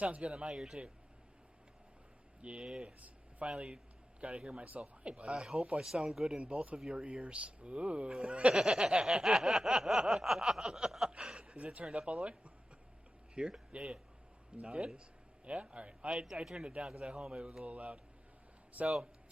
good in my ear, too. Yes. I finally got to hear myself. Hi, buddy. I hope I sound good in both of your ears. Ooh. Is it turned up all the way? Here? Yeah. No, Good? it is. Yeah? Alright. I turned it down because at home it was a little loud. So,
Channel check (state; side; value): normal; both; correlation 0.93